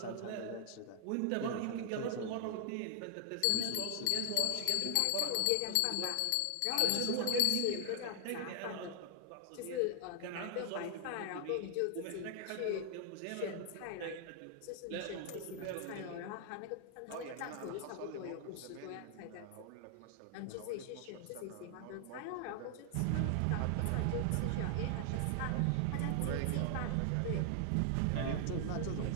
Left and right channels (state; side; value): different; both; correlation 0.00